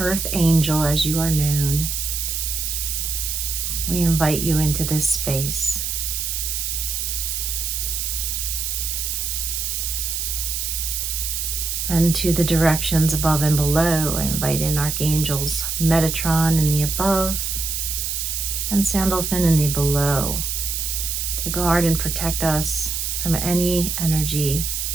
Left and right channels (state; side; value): noise; right; hiss, 2 dB below the sound